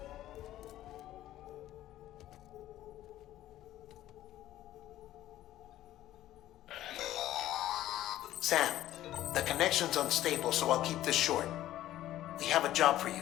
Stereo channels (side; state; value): right; quieter; 13.8 dB